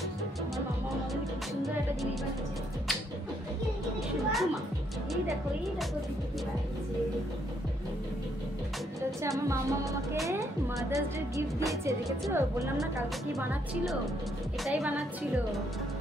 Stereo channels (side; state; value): both; normal; correlation 0.73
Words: আমার মামা মামাকে মাদার্স ডে গিফট দিয়েছে, দেখেছো? বললাম না কালকে কি বানাচ্ছিল, এটাই বানাচ্ছিল।